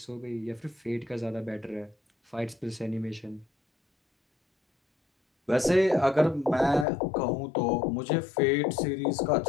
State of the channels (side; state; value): right; drops out; at 6.9 s